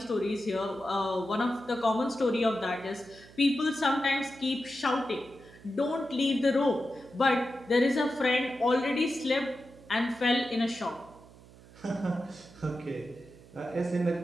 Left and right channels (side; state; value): right; noise; hum, 22 dB below the sound